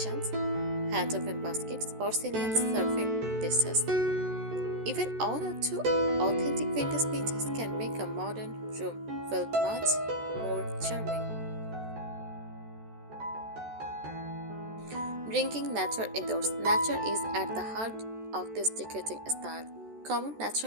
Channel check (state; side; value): late; left; 14 ms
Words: hand-open baskets, porcelain serving dishes. Even one or two authentic vintage pieces can make a modern room feel much more charming. Bringing nature indoors. Nature is at the heart of this decorating style. Common